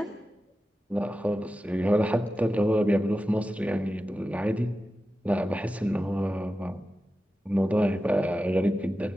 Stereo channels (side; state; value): both; normal; correlation 0.93